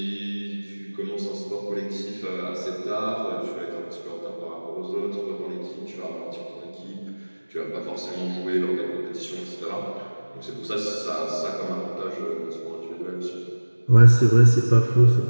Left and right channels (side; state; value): both; inverted; correlation -1.00